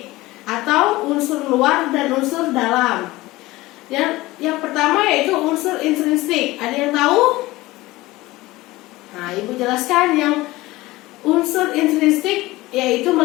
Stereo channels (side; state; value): right; quieter; 19.1 dB